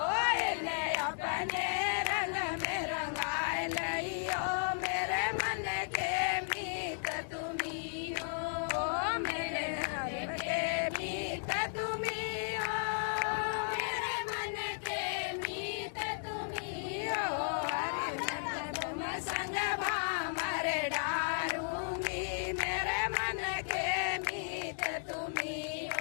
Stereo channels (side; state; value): right; silent; digital silence